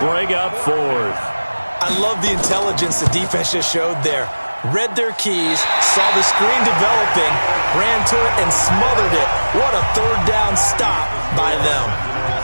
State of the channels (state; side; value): inverted; both; correlation -1.00